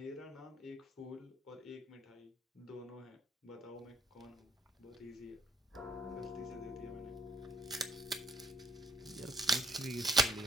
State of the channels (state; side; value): normal; both; correlation 0.66